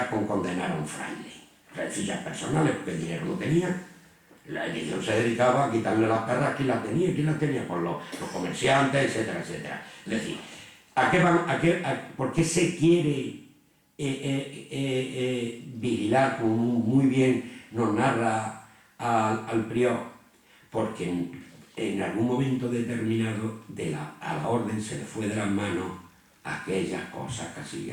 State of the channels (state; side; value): identical; both; correlation 1.00